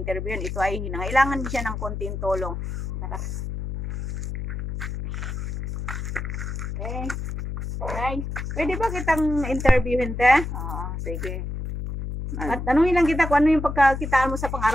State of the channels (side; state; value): left; noise; hum, 5 dB below the sound